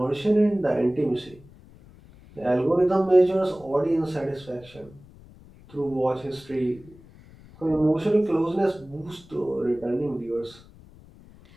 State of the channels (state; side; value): noise; left; rumble, 23 dB below the sound